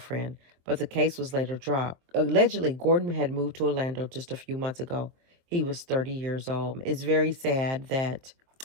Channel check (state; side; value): late; left; 23 ms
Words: but the case was later dropped. Allegedly, Gordon had moved to Orlando just a few months ago. He was 30 years old. It's very sad that